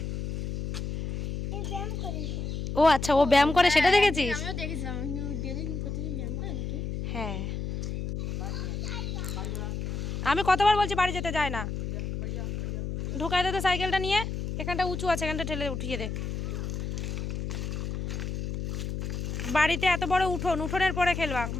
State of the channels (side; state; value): left; noise; hum, 4 dB below the sound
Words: ও আচ্ছা, ও ব্যায়াম করে সেটা দেখেছিস? হ্যাঁ আমি কতবার বলছি বাড়ি যেতে যায় না, ঢুকাই দে তো সাইকেলটা নিয়ে, এখানটা উঁচু আছে, এখানটা ঠেলে উঠিয়ে দে। বাড়িতে এত বড় উঠোন, উঠোনের পরে খেলবা,